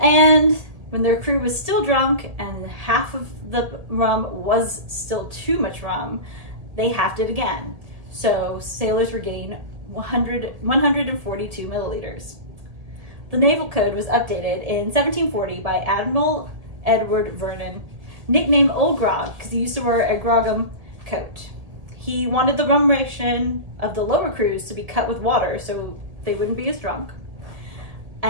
And when their crew was still drunk and half of the rum was still too much rum, they halved it again. So sailors were getting 142 milliliters. The Naval Code was updated in 1740 by Admiral Edward Vernon, nicknamed Old Grog because he used to wear a grogram coat. He wanted the rum ration of the lower crews to be cut with water so they wouldn't be as drunk.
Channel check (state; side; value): late; left; 1.8 ms